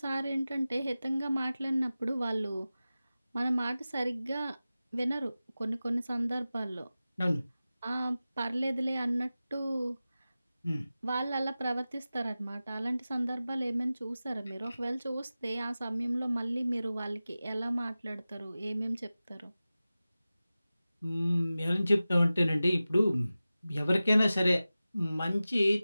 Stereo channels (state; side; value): inverted; both; correlation -0.96